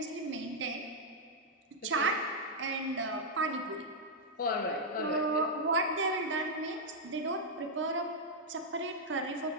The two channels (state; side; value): normal; both; correlation -0.04